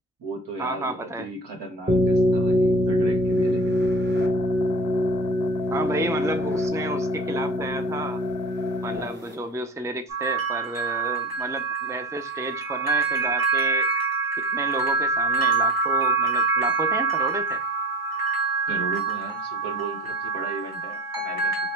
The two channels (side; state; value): both; normal; correlation 0.36